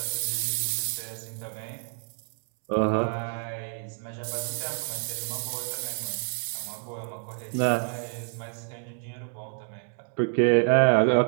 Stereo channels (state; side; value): silent; left; 59 dB below the other